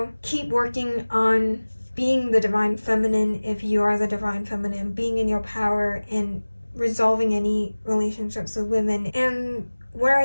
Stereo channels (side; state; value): both; inverted; correlation -1.00